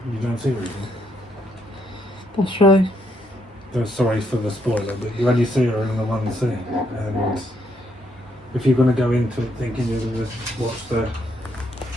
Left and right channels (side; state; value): both; normal; correlation 0.74